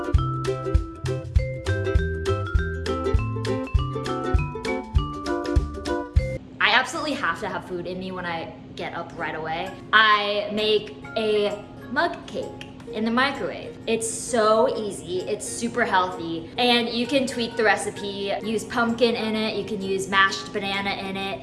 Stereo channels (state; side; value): identical; both; correlation 1.00